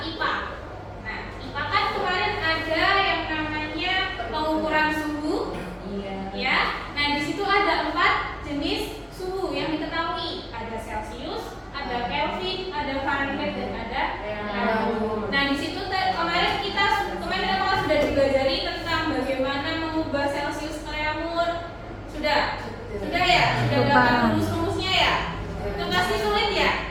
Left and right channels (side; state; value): both; identical; correlation 1.00